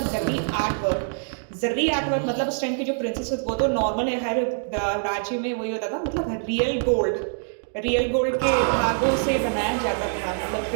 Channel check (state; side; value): silent; left; digital silence